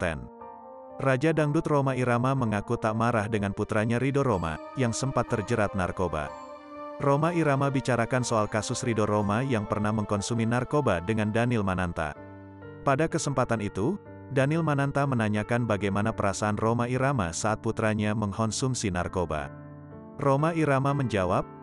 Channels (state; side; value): identical; both; correlation 1.00